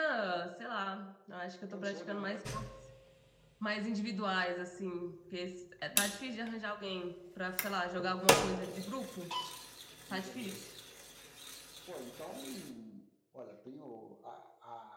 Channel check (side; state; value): both; identical; correlation 1.00